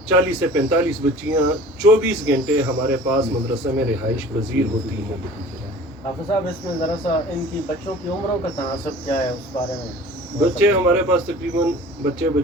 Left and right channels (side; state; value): both; normal; correlation 0.44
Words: 40 से 45 बच्चियाँ 24 घंटे हमारे पास मदरसे में रिहाइश पजीर होती हैं। हाफिज़ साहब, इसमें ज़रा सा इनकी बच्चों की उम्रों का तनासब क्या है उस बारे में? बच्चे हमारे पास तकरीबन बच्चे